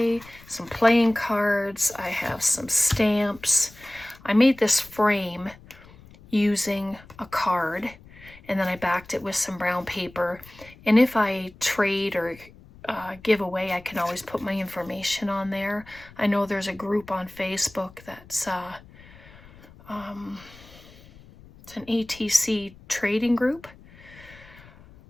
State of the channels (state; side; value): noise; left; rumble, 22 dB below the sound